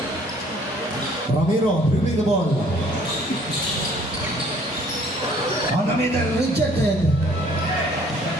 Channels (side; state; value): both; normal; correlation 0.58